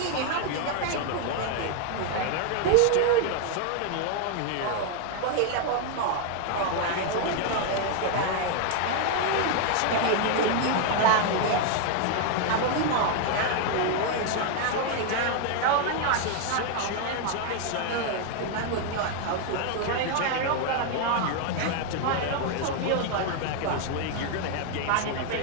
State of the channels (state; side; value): different; both; correlation 0.00